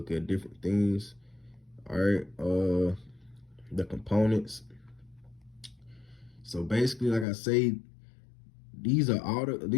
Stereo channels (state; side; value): drops out; right; at 7.2 s